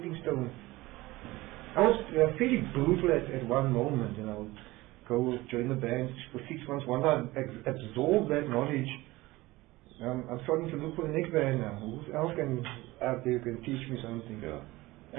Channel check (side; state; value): left; quieter; 19.6 dB